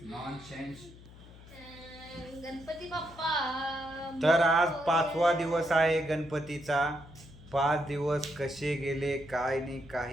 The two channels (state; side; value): noise; left; hum, 20 dB below the sound